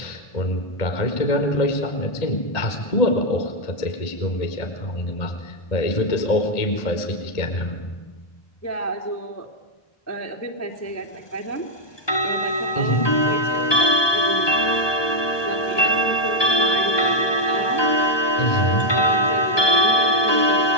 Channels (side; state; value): right; late; 1.2 ms